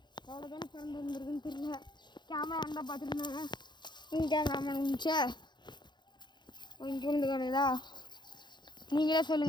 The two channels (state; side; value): late; right; 0.21 ms